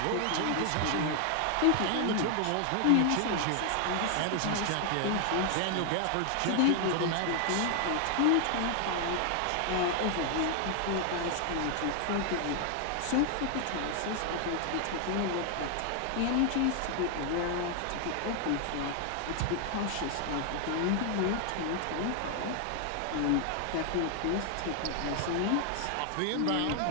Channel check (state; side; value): different; both; correlation 0.00